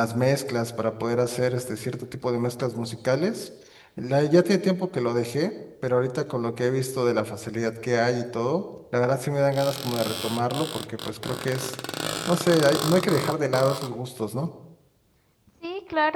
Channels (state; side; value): identical; both; correlation 1.00